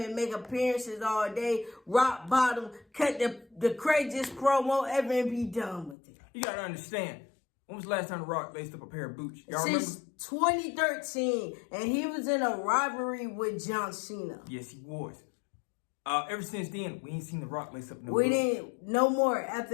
make appearances all day, rock bottom, cut the craziest promo ever and be done with it. You got to understand. When was the last time The Rock laced up a pair of boots? Y'all remember? Since 2013, and he was in a rivalry with John Cena. Yes, he was. Ever since then, we ain't seen The Rock lace up no We didn't, no more.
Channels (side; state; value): right; drops out; at 6.0 s